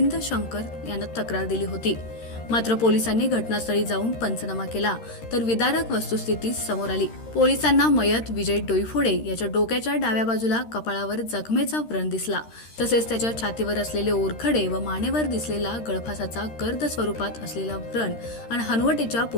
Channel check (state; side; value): late; right; 13 ms